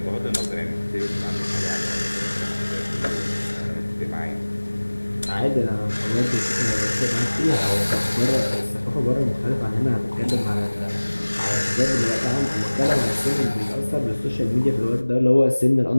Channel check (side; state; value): both; inverted; correlation -1.00